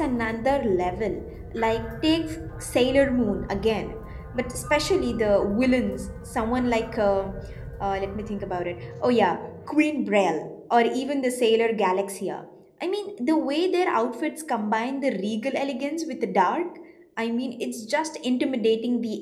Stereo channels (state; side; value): identical; both; correlation 1.00